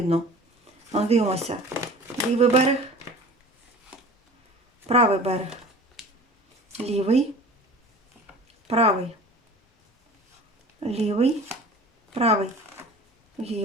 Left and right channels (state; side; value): normal; both; correlation 0.41